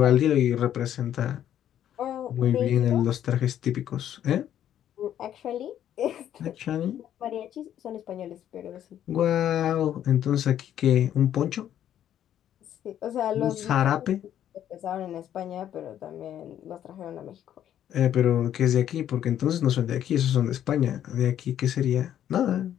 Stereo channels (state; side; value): quieter; right; 10.8 dB